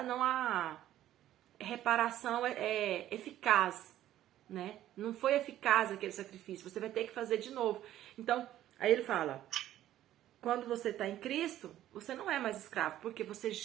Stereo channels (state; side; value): quieter; left; 12.9 dB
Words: reparação eficaz, né? Não foi eficaz aquele sacrifício. Você vai ter que fazer de novo. Então, aí ele fala, quando você está em Cristo, você não é mais escravo, porque você